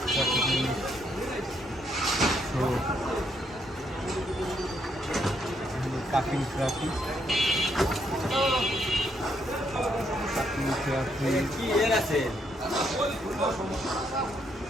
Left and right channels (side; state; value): both; normal; correlation 0.74